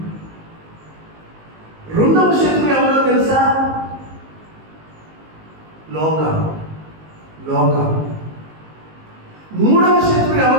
రెండవ శత్రువు ఎవరో తెలుసా? లోకం. మూడవ శత్రువు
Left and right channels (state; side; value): late; left; 19 ms